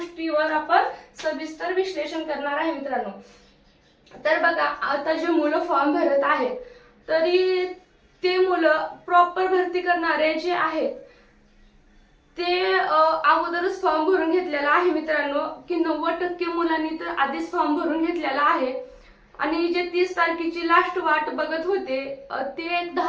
आपण सविस्तर विश्लेषण करणार आहे मित्रांनो। तर बघा, आता जे मुलं फॉर्म भरत आहेत तरी ते मुलं प्रॉपर भरती करणारे जे आहेत ते अगोदरच फॉर्म भरून घेतलेला आहे मित्रांनो, की 90% मुलांनी तर आधीच फॉर्म भरून घेतलेला आहे आणि जे 30 तारखेची लास्ट वाट बघत होते ते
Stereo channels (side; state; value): both; identical; correlation 1.00